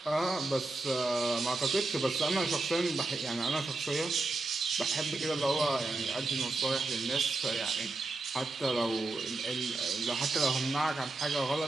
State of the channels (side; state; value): left; quieter; 3.2 dB